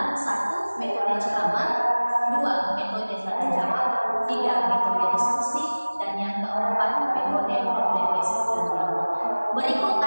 1. Metode ceramah, 2. Metode tanya jawab, 3. Metode diskusi, dan yang keempat metode problem basic learning. Berikut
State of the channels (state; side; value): inverted; both; correlation -1.00